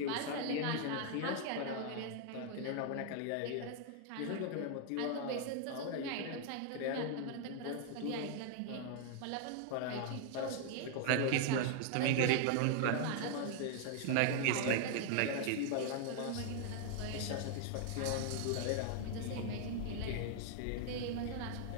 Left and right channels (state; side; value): different; both; correlation 0.00